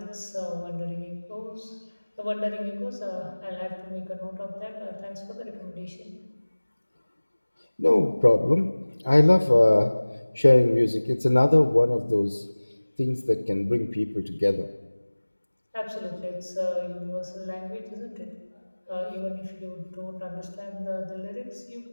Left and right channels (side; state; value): both; inverted; correlation -1.00